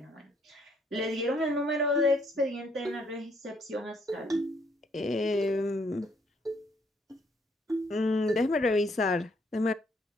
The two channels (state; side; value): normal; both; correlation 0.68